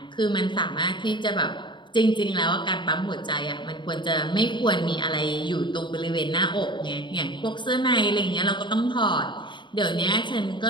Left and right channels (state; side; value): late; right; 0.23 ms